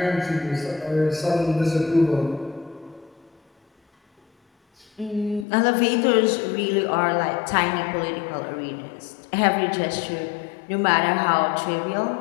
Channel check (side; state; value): right; drops out; at 5.5 s